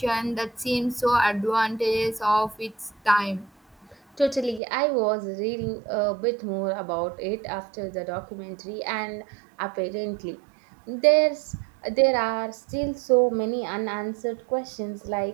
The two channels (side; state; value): left; drops out; at 4.6 s